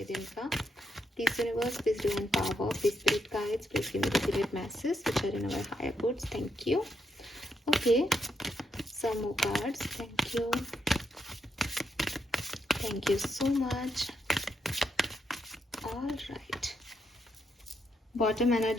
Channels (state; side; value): normal; both; correlation 0.80